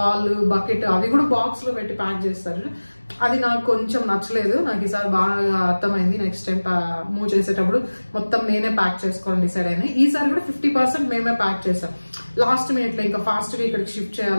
బకెట్ అవి కూడా బాక్స్ లో పెట్టి ప్యాక్ చేస్తారు. అది నాకు కొంచెం నచ్చలేదు. నాకు ఈసారి బాగా అర్థమైంది. నెక్స్ట్ టైం మూవ్ చేసేటప్పుడు మొత్తం నేనే ప్యాక్ చేసుకోవాలని డిసైడ్ అయినా. ఈసారి కూడా 50% మేమే ప్యాక్ చేసాం. లాస్ట్ మినిట్ లో ఇంకా ఫాస్ట్ గా ఇక్కడికి షిఫ్ట్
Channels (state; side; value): inverted; both; correlation -1.00